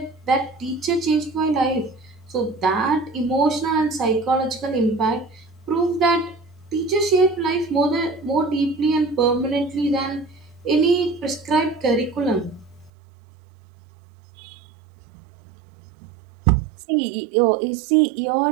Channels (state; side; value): drops out; left; at 12.9 s